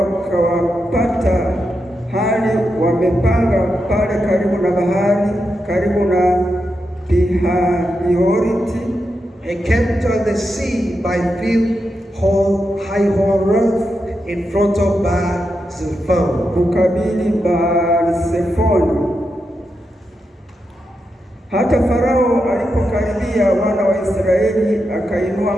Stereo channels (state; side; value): normal; both; correlation 0.86